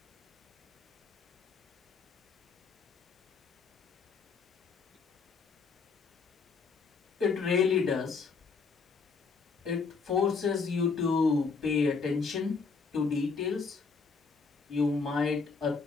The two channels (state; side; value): quieter; right; 4.9 dB